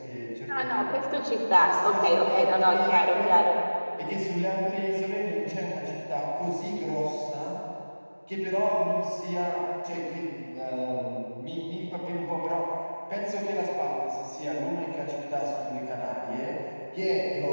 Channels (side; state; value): both; inverted; correlation -1.00